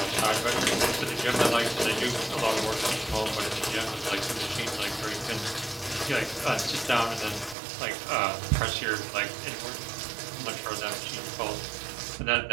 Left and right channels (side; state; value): left; drops out; at 7.6 s